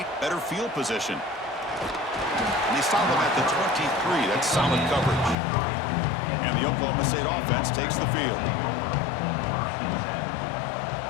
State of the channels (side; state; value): right; drops out; at 5.4 s